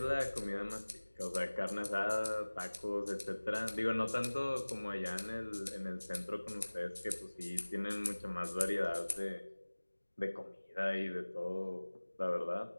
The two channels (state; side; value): inverted; both; correlation -1.00